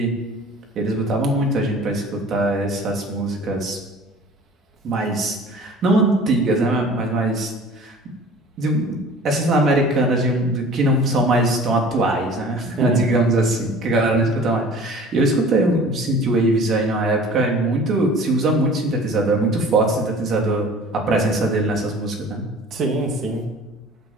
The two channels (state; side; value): normal; both; correlation 0.46